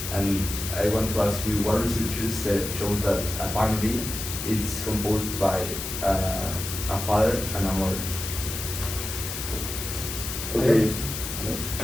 And I want to ask you, what researchers said shows that a family is composed by a father and a mother. Okay.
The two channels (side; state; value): left; noise; hiss, 6 dB below the sound